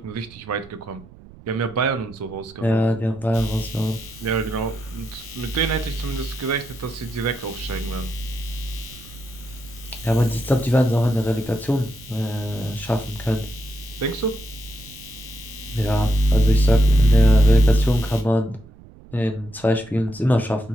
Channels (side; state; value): right; noise; rumble, 21 dB below the sound